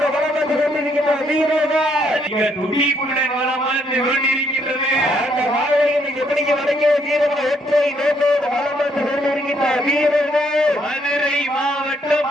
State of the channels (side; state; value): both; normal; correlation 0.71